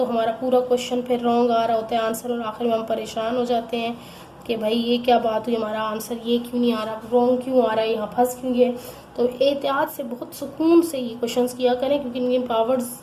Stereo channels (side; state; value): both; identical; correlation 1.00